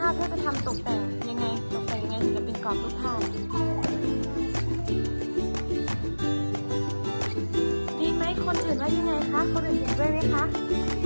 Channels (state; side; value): inverted; both; correlation -1.00